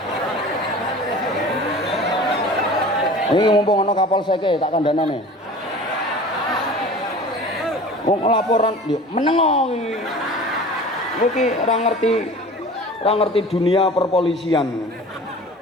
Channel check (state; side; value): normal; both; correlation 0.41